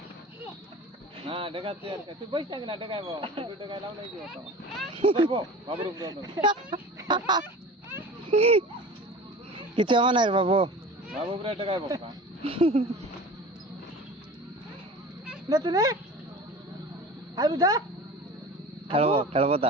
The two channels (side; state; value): both; normal; correlation 0.37